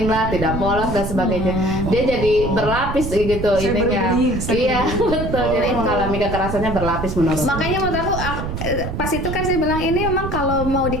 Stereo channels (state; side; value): noise; right; rumble, 5 dB below the sound